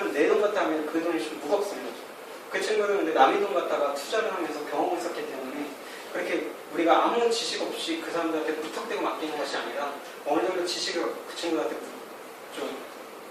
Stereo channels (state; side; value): identical; both; correlation 1.00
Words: 내 돈 갖다 하면 그 돈이 좀 무겁습니다. 그 친구들은 근데 남의 돈 갖다가 투자를 하면서 경험을 쌓기 때문에 그렇게 우리가 아무 지식 없이 그 사람들한테 무턱대고 맡기는 것이 아니라 어느 정도 지식을 그 친구들한테 좀